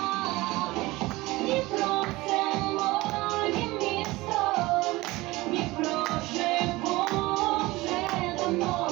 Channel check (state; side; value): quieter; left; 20.3 dB